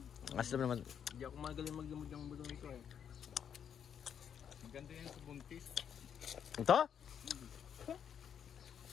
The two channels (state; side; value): quieter; right; 8.3 dB